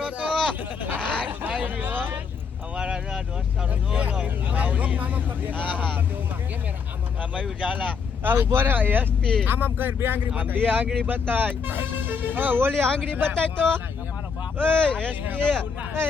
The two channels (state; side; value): quieter; right; 5.9 dB